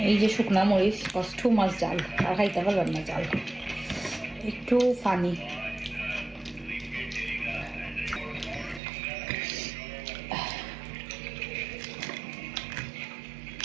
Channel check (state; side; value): drops out; left; at 8.8 s